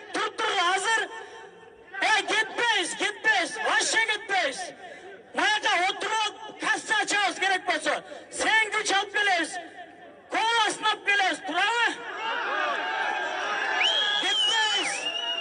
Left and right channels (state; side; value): identical; both; correlation 1.00